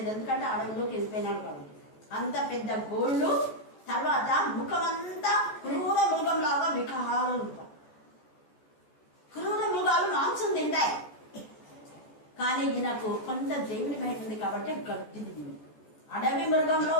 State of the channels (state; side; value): late; right; 14 ms